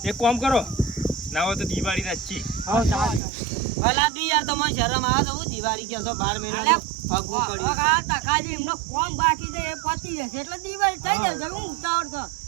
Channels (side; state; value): left; drops out; at 3.2 s